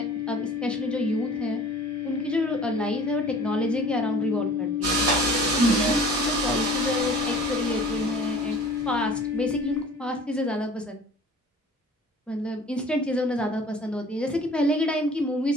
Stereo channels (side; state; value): both; normal; correlation 0.46